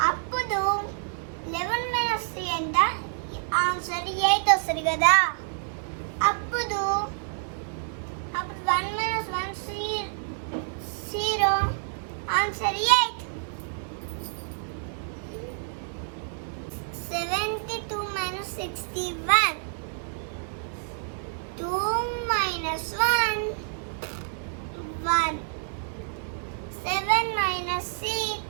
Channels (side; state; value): left; silent; digital silence